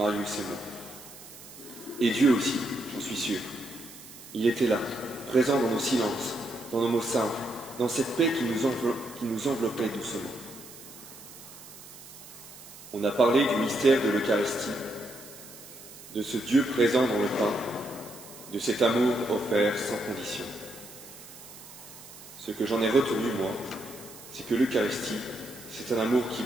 et moi. Et Dieu aussi, j'en suis sûr. Il était là, présent dans nos silences, dans nos mots simples, dans cette paix qui nous enveloppait doucement. On a parlé du mystère de l'Eucharistie, de ce Dieu présent dans le pain, de cet amour offert sans condition. Ce que j'en ai retenu, moi, c'est que l'Eucharistie, c'est un amour qui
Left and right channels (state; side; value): noise; right; hiss, 17 dB below the sound